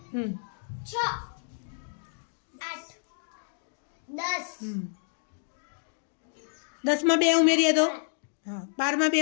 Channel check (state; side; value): silent; right; digital silence